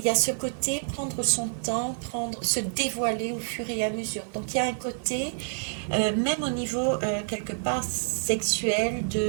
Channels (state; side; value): silent; left; digital silence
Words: y a ce côté prendre son temps, se dévoiler au fur et à mesure. Donc il y a un côté, même au niveau quelque part sexuel,